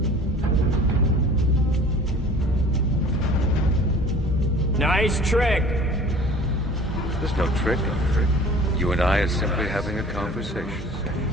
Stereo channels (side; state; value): both; normal; correlation 0.46